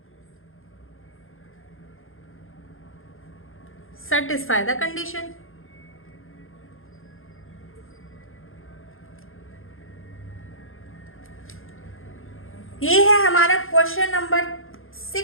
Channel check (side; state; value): right; late; 0.60 ms